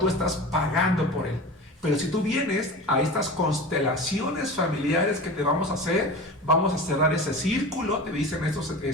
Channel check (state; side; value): normal; both; correlation 0.32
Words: estás pagando por él. Pero si tú vienes a estas constelaciones familiares que te vamos a hacer, vamos a cerrar ese círculo, te dicen estos